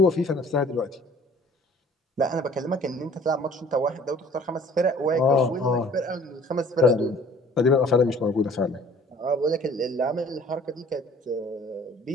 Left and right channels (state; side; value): normal; both; correlation 0.52